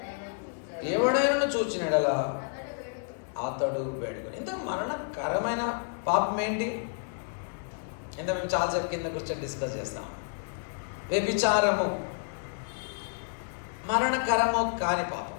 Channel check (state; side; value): silent; right; digital silence